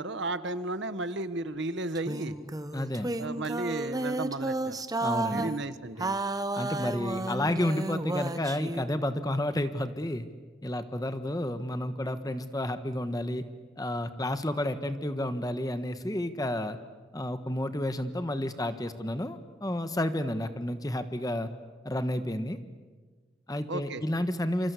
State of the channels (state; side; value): normal; both; correlation 0.72